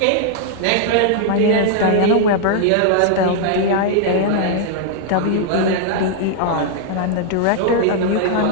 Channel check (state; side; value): different; both; correlation -0.01